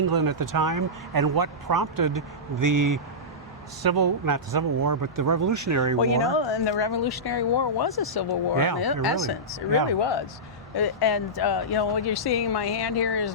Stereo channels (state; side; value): normal; both; correlation -0.14